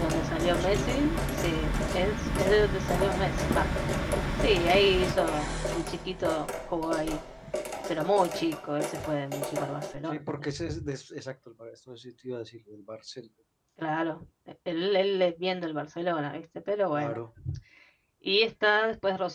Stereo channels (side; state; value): both; identical; correlation 1.00